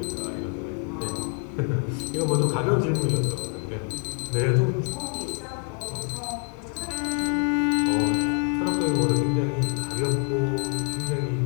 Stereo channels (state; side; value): quieter; right; 39.7 dB